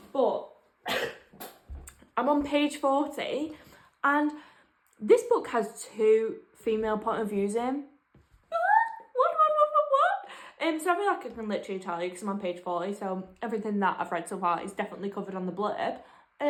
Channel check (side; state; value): both; identical; correlation 1.00